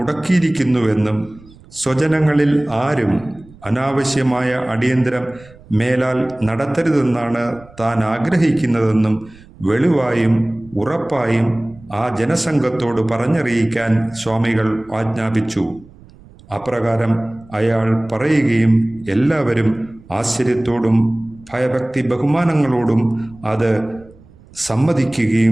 സ്വജനങ്ങളിൽ ആരും അനാവശ്യമായ അടിയന്തരം മേലാൽ നടത്തരുതെന്നാണ് താൻ ആഗ്രഹിക്കുന്നതെന്നും വെളിവായും ഉറപ്പായും ആ ജനസംഘത്തോട് പറഞ്ഞറിയിക്കാൻ സ്വാമികൾ ആജ്ഞാപിച്ചു. അപ്രകാരം അയാൾ പറയുകയും എല്ലാവരും ആശ്ചര്യത്തോടും ഭയഭക്തി ബഹുമാനങ്ങളോടും അത്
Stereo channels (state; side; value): noise; right; rumble, 24 dB below the sound